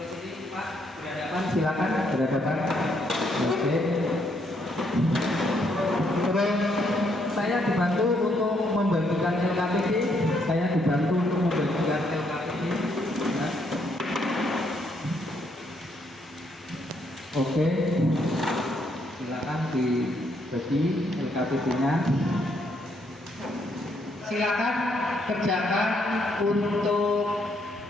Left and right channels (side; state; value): both; normal; correlation 0.73